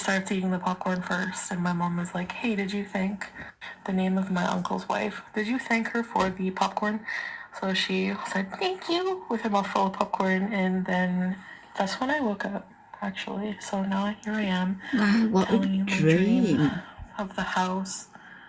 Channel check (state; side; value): identical; both; correlation 1.00